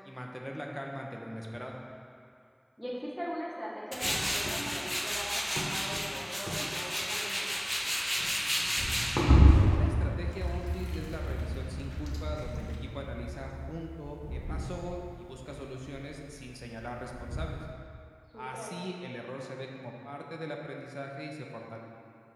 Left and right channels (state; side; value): identical; both; correlation 1.00